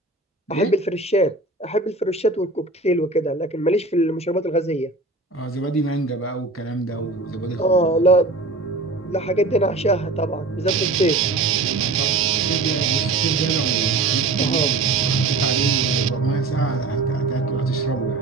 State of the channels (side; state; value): left; quieter; 3.2 dB